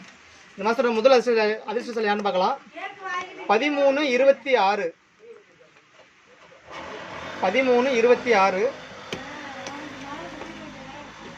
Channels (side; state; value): both; identical; correlation 1.00